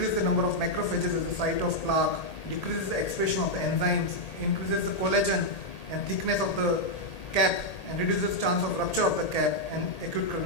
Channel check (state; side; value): late; right; 1.8 ms